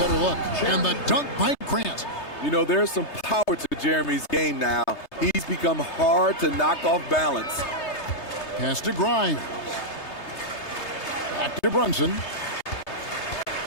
better look. And the dunk by Grant. You know, there's some power to Jeremy's game now. He's become hard to knock off balance. Pass to Grimes. Back to Brunson.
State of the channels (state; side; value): late; right; 3.3 ms